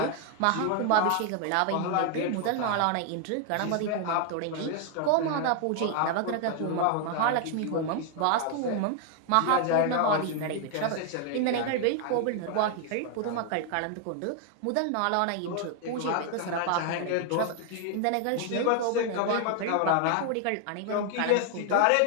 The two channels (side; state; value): both; different; correlation 0.00